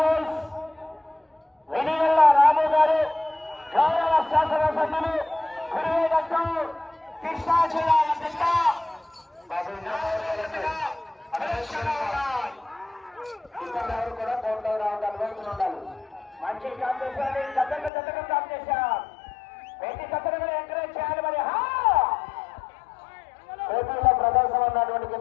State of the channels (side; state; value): right; drops out; at 17.9 s